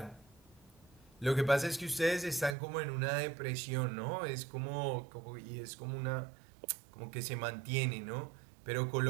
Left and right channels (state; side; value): drops out; left; at 2.6 s